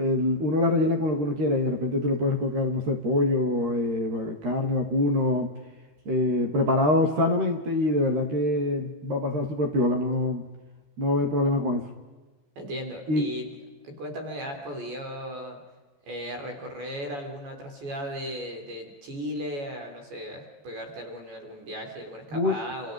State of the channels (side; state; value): left; late; 14 ms